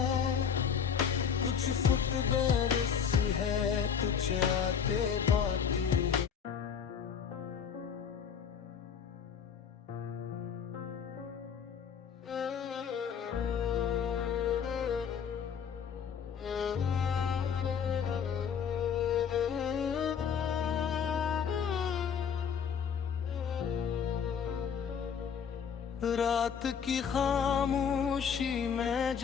कुछ फुट बरस है, कुछ आते बातें है। रात की खामोशी में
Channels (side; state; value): right; quieter; 7.3 dB